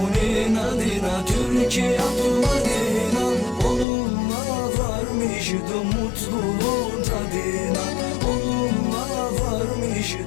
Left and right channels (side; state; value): right; drops out; at 3.9 s